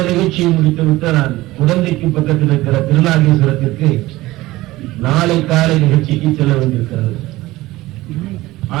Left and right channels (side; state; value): left; quieter; 18.2 dB